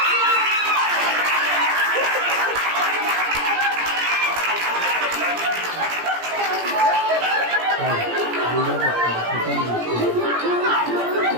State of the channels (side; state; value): left; late; 17 ms